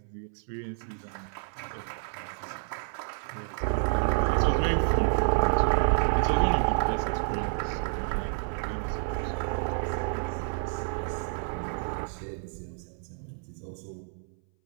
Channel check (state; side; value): silent; left; 58 dB below the other